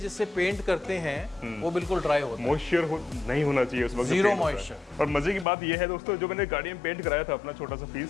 पेंट करते हैं वो बिल्कुल ड्राई होता है। मॉइस्चर नहीं होना चाहिए उस वक्त, जीरो मॉइस्चर। और मजे की बात ये है दोस्तों, जो मैंने गाड़ी में पेंट कराया था अपना छोटा सा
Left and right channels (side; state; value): right; drops out; at 5.5 s